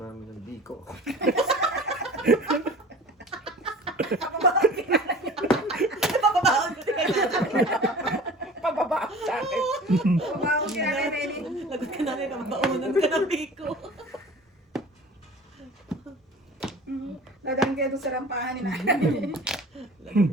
mami ng biko. Papabaon ko Pababa sa akin. Pabawag ka na, Nelly. Lagot ka namin, kababaunan ka ng biko. Dadaan kayo doon sa rampahan ni nanay.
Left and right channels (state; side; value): normal; both; correlation 0.42